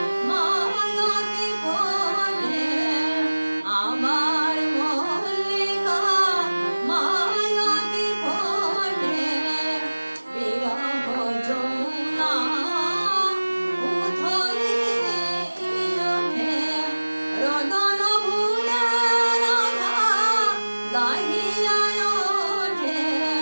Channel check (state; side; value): inverted; both; correlation -1.00